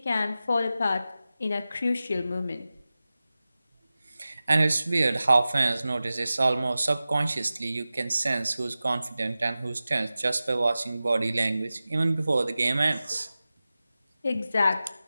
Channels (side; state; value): both; inverted; correlation -0.95